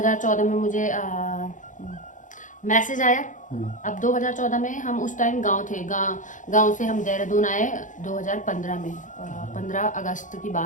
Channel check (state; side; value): late; right; 0.37 ms